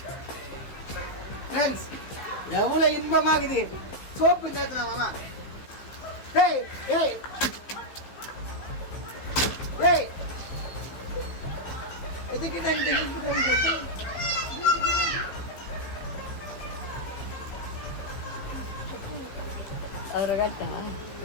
ஃப்ரெண்ட்ஸ், எவ்வளவு இன்பமாகுது சோப்பு நேரத்துல மாமா. ஏய் ஏய் ஏய் எதுக்கு அவரை காட்டா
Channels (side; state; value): right; late; 15 ms